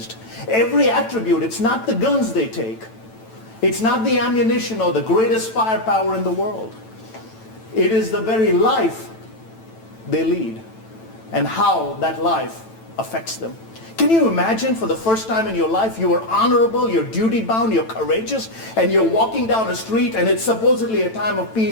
Every attribute, it's not the guns they take. It's not the ammunition or the greatest firepower in the world. It is the very life they lead and how that life affects them. Can you imagine for the first time in your life you are honorable, you're duty-bound, you're courageous, and you're walking down a street and it's supposedly a time of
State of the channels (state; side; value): late; right; 9.0 ms